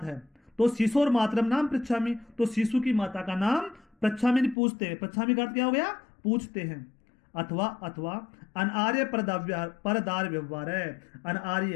है तो शिशोर मातरम नाम पृच्छामि, तो शिशु की माता का नाम पृच्छामि पूछते हैं। पृच्छामि का अर्थ क्या हो गया, पूछते हैं। अथवा अनार्य परदार व्यवहार है।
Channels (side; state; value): right; drops out; at 4.5 s